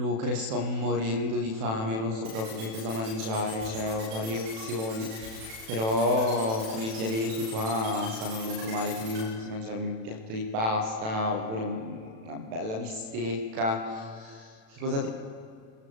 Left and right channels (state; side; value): late; left; 36 ms